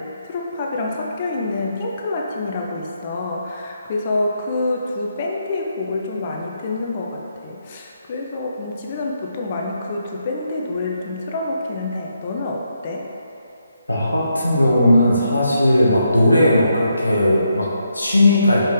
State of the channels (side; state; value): both; inverted; correlation -0.79